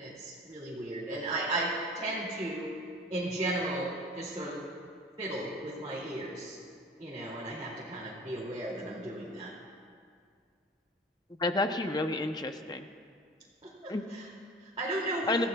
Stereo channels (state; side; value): normal; both; correlation 0.41